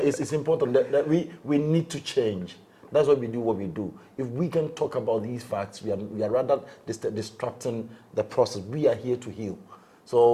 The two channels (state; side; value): identical; both; correlation 1.00